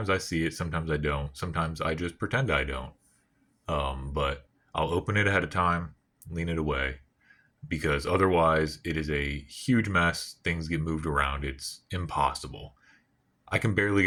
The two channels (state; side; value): identical; both; correlation 1.00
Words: I see it, sometimes I don't. Sometimes I just pretend I don't. But I'll open it ahead of time, lean it away, because otherwise it is a huge mess. Things get moved around. It's impossible. I can barely